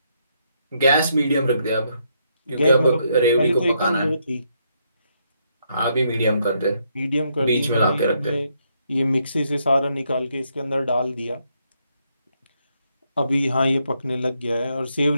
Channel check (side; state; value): both; inverted; correlation -0.76